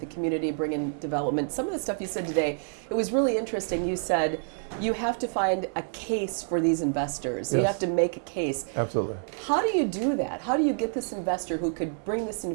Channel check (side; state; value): left; silent; 59 dB below the other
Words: community, bring in development. Some of the stuff you said today, it was really interesting. You said you have to find a case for these investors. Yes. You have to make a case. Absolutely. How do you do that? How do you get this investor who could bring this